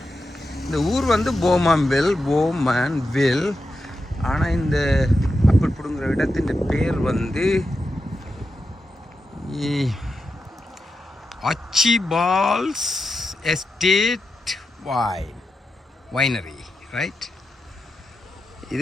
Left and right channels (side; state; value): both; normal; correlation 0.88